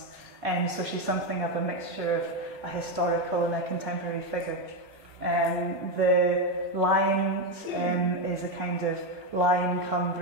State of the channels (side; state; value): right; late; 1.3 ms